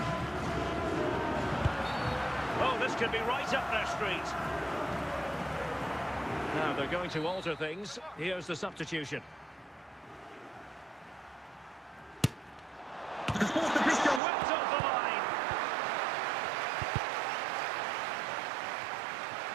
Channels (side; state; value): left; drops out; at 14.2 s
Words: Oh, this could be right up their street. Now they're going to alter things. Here's the substitution. The fourth official Whipped off the line.